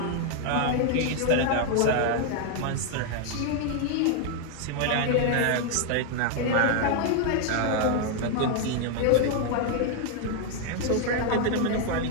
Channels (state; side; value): different; both; correlation 0.00